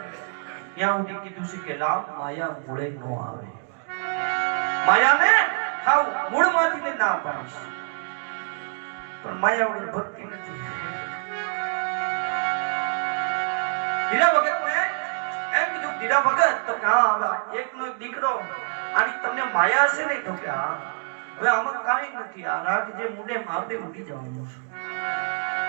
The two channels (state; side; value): silent; left; 61 dB below the other